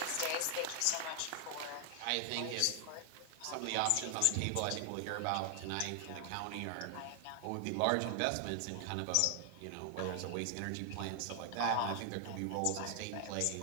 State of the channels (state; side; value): different; both; correlation 0.00